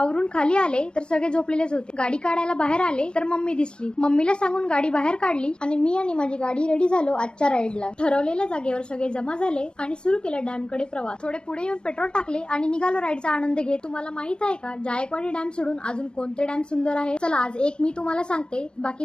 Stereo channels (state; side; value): late; right; 0.051 ms